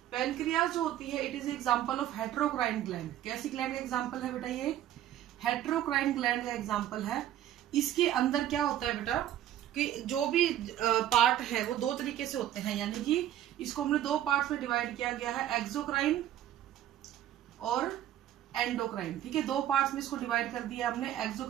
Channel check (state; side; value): quieter; left; 12.1 dB